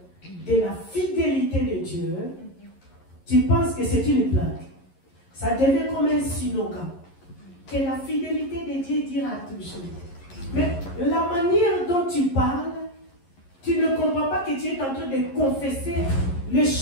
de la fidélité de Dieu, tu penses que c'est une blague. Ça devient comme un slogan. Que la fidélité de Dieu dira toujours. Mais la manière dont tu parles, tu ne comprends pas que tu es en train de confesser les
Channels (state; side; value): late; right; 11 ms